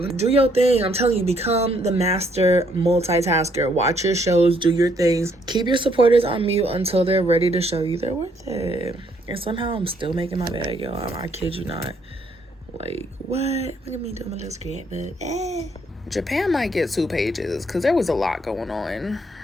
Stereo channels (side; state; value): both; normal; correlation 0.69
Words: do your thing. I'm telling you, become the master multitasker. Watch your shows, do your things. Keep your supporters on mute until they're ready to show you they're worth it. And somehow I'm still making my bag, y'all. I kid you not. Like, what? Look at me doing my little scrapbook. Japan might get 2 pages because there was a lot going on.